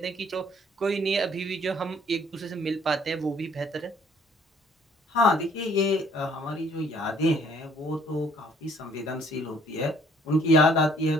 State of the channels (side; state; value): both; normal; correlation 0.60